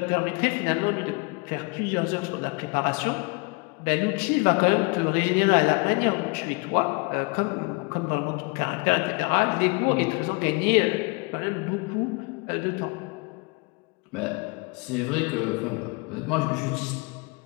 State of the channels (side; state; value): right; quieter; 29.0 dB